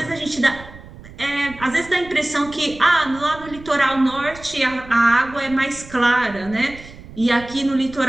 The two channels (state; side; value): noise; right; rumble, 18 dB below the sound